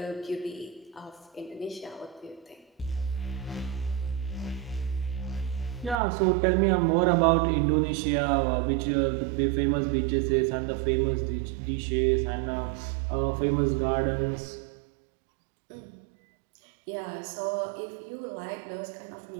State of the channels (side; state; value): left; drops out; at 6.0 s